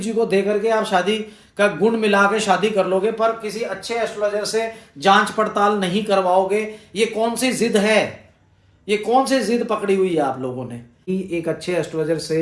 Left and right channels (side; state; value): both; identical; correlation 1.00